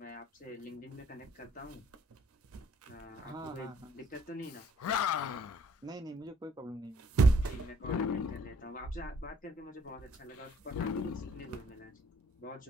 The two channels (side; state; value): both; normal; correlation 0.62